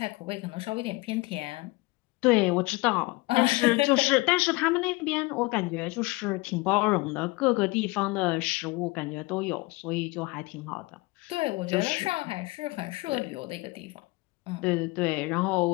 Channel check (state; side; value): quieter; right; 23.4 dB